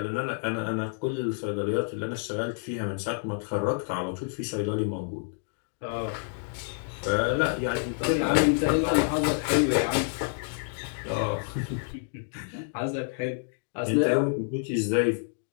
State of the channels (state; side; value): silent; right; digital silence